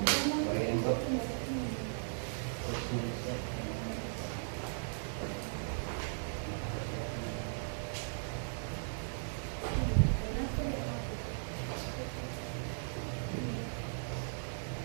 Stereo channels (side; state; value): left; silent; digital silence